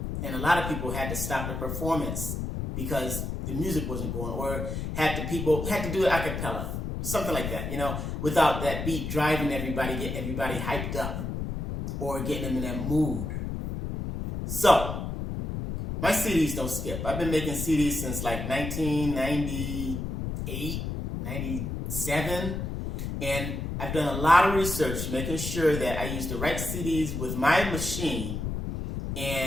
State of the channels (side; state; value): left; noise; rumble, 4 dB below the sound